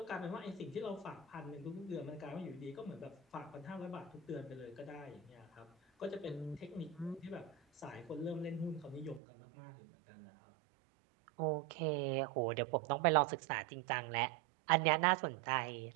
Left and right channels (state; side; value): drops out; left; at 9.2 s